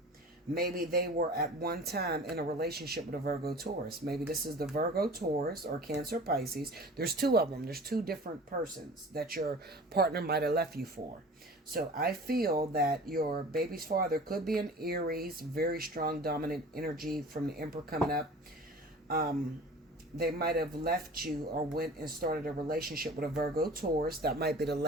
Maybe they were at one time in a relationship with a Virgo Taurus. Maybe this is the Virgo Taurus or Cancer Pisces. There's two of them. There's two different persons that your partner might have left you for. So I feel that your baby's father could be an Aries, very strong dominant energy from the Emperor coming up. They might have left you or went and started a relationship with a Virgo Taurus. That might be the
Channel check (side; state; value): both; normal; correlation 0.41